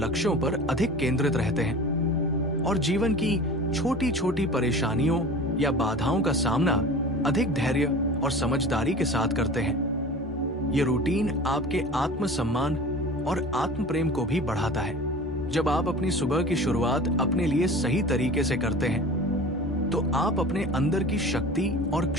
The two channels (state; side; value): normal; both; correlation 0.38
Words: पर अधिक केंद्रित रहते हैं और जीवन की छोटी छोटी परेशानियों या बाधाओं का सामना अधिक धैर्य और समझदारी के साथ करते हैं। ये रूटीन आपके आत्मसम्मान और आत्म प्रेम को भी बढ़ाता है। जब आप अपनी सुबह की शुरुआत अपने लिए सही तरीके से करते हैं, तो आप अपने अंदर की शक्ति और